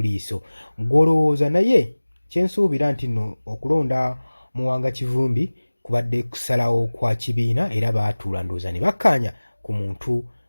liiso. Gw'olowooza naye kyensuubira nti nno okulonda Muwanga Kivumbi kubadde kusalawo kwa kibiina era baatuula ndowooza ne bakkaanya ku muntu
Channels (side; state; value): both; inverted; correlation -1.00